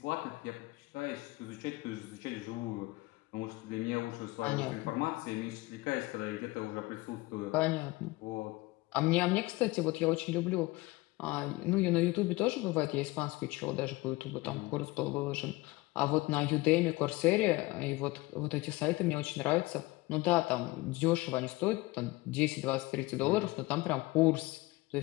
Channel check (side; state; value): right; quieter; 21.2 dB